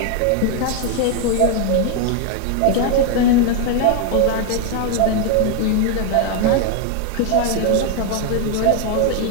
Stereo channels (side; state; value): both; different; correlation 0.01